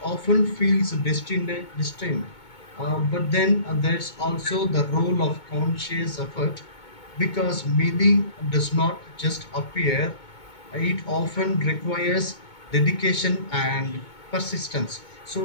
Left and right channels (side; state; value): right; late; 2.2 ms